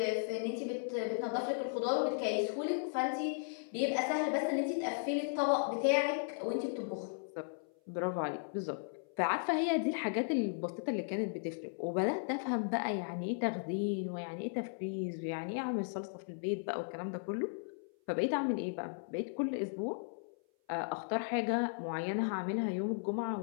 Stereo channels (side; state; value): right; silent; 54 dB below the other